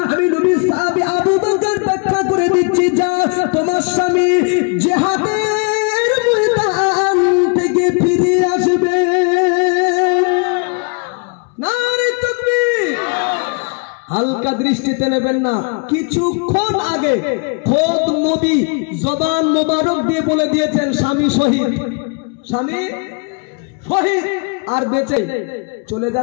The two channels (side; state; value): right; quieter; 35.4 dB